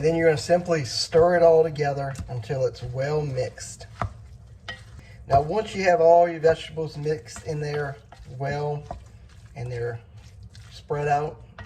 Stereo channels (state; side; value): identical; both; correlation 1.00